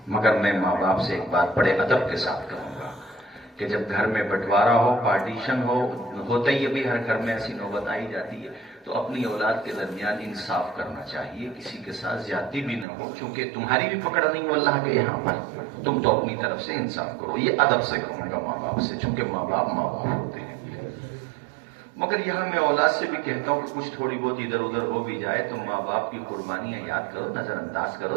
مگر میں ماں باپ سے ایک بات بڑے ادب کے ساتھ کہوں گا کہ جب گھر میں بٹوارا ہو، پارٹیشن ہوتا ہی ابھی ہر گھر میں ایسی نوبت آئی جاتی ہے، تو اپنی اولاد کے درمیان انصاف کرنا چاہیے، کسی کے ساتھ زیادتی بھی نہ ہو، کیونکہ تمہاری بھی پکڑ نہیں ہو اللہ کے یہاں پر، تم تو اپنی طرف سے انصاف کرو۔ یہ ادب سے کہوں گا ماں باپ سے، چونکہ ماں باپ ہوتے ہیں۔ مگر یہاں میں اولاد سے بھی کہتا ہوں کہ کچھ تھوڑی بہت ادھر ادھر ہو بھی جائے تو ماں باپ کی قربانیاں یاد کرو، نظر انداز کرو،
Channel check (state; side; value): drops out; left; at 12.9 s